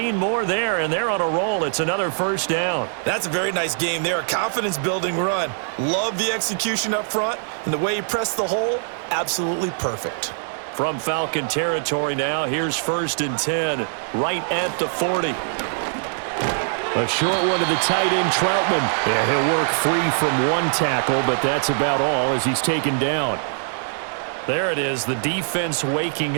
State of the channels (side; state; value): left; silent; 64 dB below the other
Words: more there, and they're on a roll. It's another first down. That's a very nice game there, a confidence-building run. Love the execution up front, and the way he pressed the hole, absolutely perfect. From Falcon territory now, here's 1st and 10, right at the 40. A short one to the tight end, Troutman. Yeah, he'll work free from one tackle, but that's about all as he's taken down. There it is, the defense waking